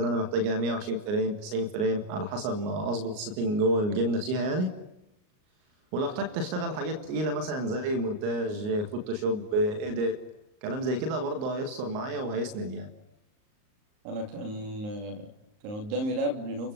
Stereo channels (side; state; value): left; late; 38 ms